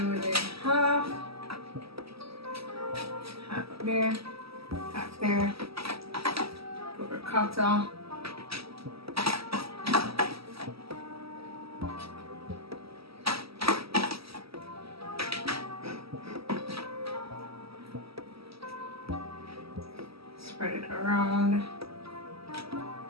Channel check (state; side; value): late; left; 0.76 ms